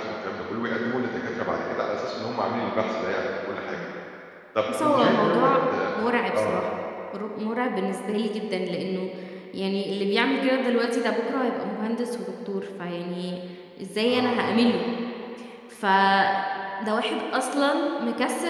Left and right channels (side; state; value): both; identical; correlation 1.00